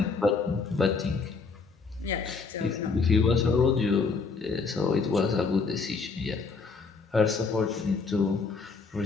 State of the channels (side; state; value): right; quieter; 4.7 dB